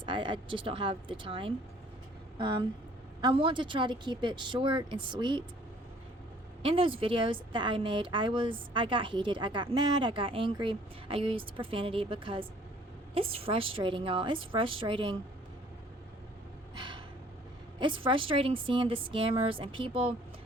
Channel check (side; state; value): both; normal; correlation 0.56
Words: I just don't have the time. I want to try to keep it short and sweet. In those videos that I made, I got heated, I got mad, I got angry, I used profanity because it's frustrating, y'all. It's frustrating. It's frustrating seeing the scammers and people